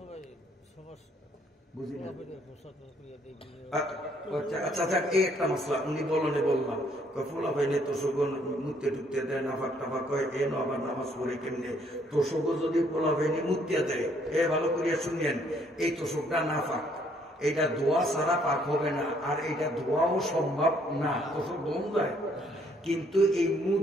বুঝি না। আচ্ছা যাক, এই একটা মশলা উনি বলনে বললাম, ফুলা ভাইনে তোষক মুতে টুকতে দেয়, নাফাক টাফাক কয়, এ আবার নামাজ পড়ে কেমনে? তোষক যদি পোলা ভাইনে মুতিয়া দেয়, এ ভালো করিয়া শুনিয়েন, এই তোষকটা নাফাক, এইটা ধোয়া ছাড়া পাক হবে না, আর এইটা ধোয়াও সম্ভব না, তোষক দম যায়। কিন্তু এই মুখ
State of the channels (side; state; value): both; normal; correlation 0.66